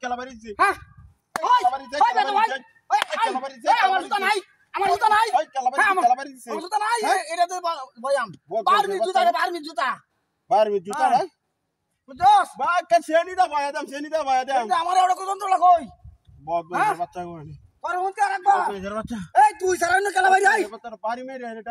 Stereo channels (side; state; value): both; identical; correlation 1.00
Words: কেলা বাড়িছে হ্যাঁ ওই কেলা বাড়িছে আমার জুতা নাই ওই কেলা বাড়িছে আমার জুতা নাই এটা তো বয়াম বারমি জুতা না বুঝছস বা কে সেনি দা বয়া দাম আমার এড়ো কত লাগই বহুত বাচ্চা কইনি আর হুনতে রাখবা বাচ্চা এই তুই সারা না কেলা বাড়ি আই তোর বাড়ি মেরে